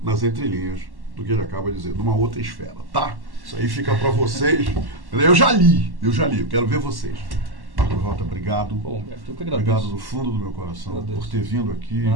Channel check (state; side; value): late; left; 1.1 ms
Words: nas entrelinhas do que ele acaba de dizer, numa outra esfera, tá? Isso aí fica para vocês. Eu já li, eu quero ver vocês. Marcos Rota, obrigado. Bom, eu que agradeço. Obrigado do fundo do meu coração por ter vindo aqui,